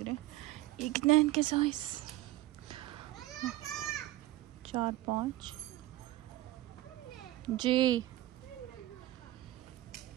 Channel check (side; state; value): left; quieter; 16.3 dB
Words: रहे। ये कितना है इनके साइज? 4 5 जी